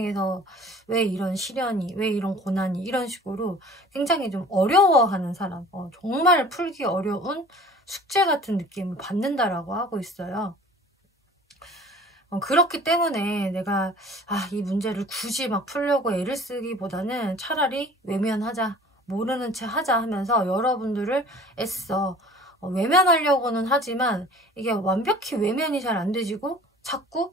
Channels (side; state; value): both; normal; correlation 0.47